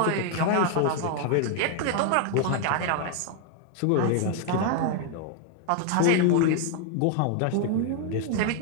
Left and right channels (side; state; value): both; different; correlation 0.00